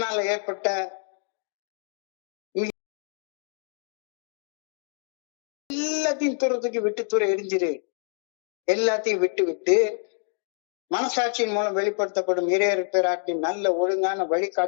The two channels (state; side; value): silent; right; 60 dB below the other